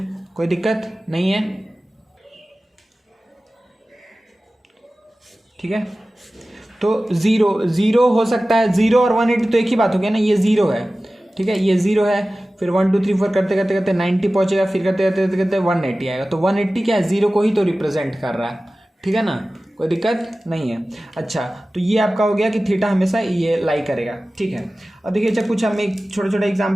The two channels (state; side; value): normal; both; correlation 0.96